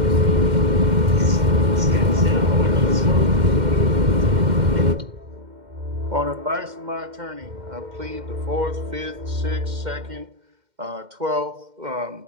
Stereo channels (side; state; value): left; late; 2.1 ms